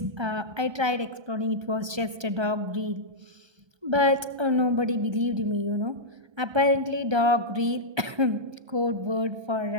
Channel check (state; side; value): late; left; 1.3 ms